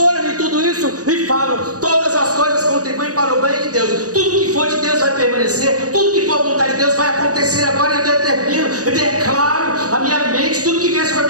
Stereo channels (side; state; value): left; late; 0.67 ms